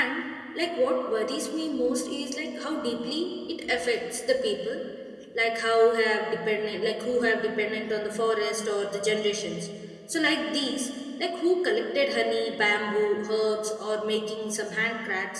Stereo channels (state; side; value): identical; both; correlation 1.00